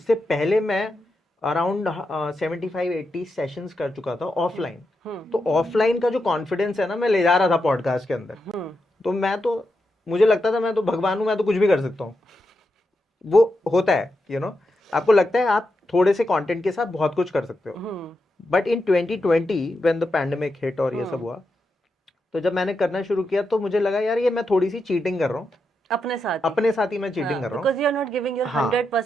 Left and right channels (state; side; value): normal; both; correlation 0.86